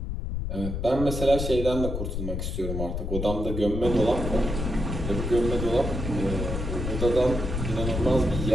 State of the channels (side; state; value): left; noise; rumble, 3 dB below the sound